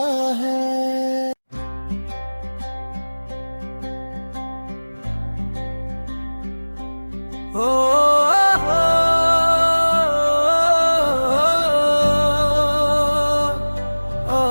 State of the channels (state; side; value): inverted; both; correlation -1.00